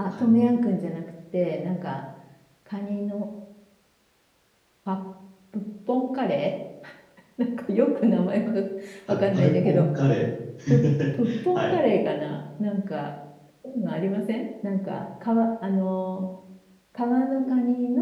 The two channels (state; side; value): identical; both; correlation 1.00